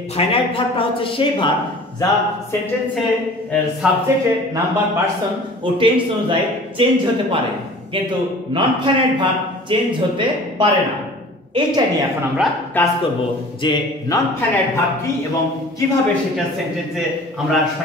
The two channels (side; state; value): both; normal; correlation 0.45